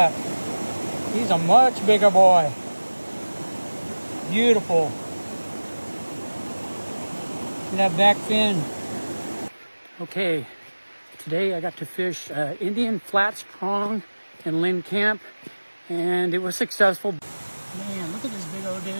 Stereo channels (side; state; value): both; inverted; correlation -1.00